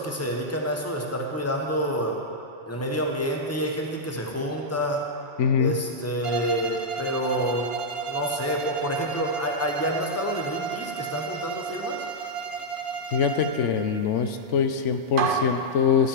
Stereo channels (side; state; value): both; normal; correlation -0.07